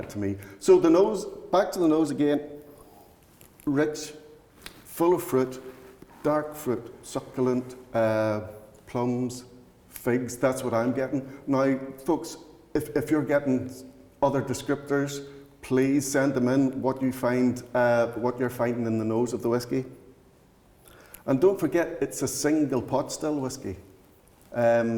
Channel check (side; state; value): both; identical; correlation 1.00